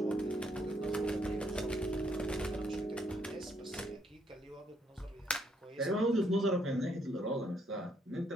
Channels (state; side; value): normal; both; correlation 0.72